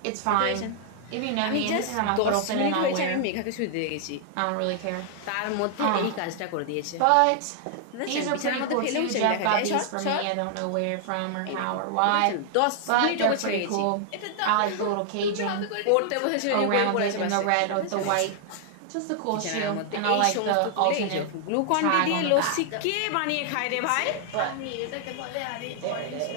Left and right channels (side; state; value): both; different; correlation 0.00